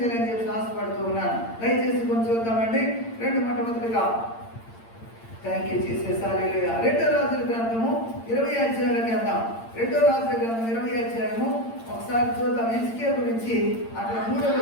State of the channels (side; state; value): right; late; 8.8 ms